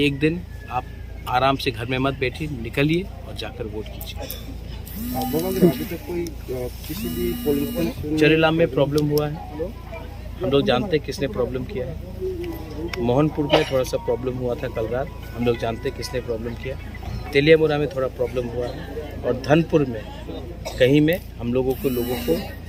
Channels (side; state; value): both; identical; correlation 1.00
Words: एक दिन आप आराम से घर में मत बैठिए, निकलिए और जाकर वोट कीजिए। चरेलाम में प्रॉब्लम हुआ है, हम लोग जानते हैं किसने प्रॉब्लम किया है। मोहनपुर में थोड़ा सा प्रॉब्लम हुआ था कल रात, हम लोग जानते हैं किसने प्रॉब्लम किया। तेलियामुरा में थोड़ा प्रॉब्लम हुआ है, और धनपुर में कहीं में हम लोगों को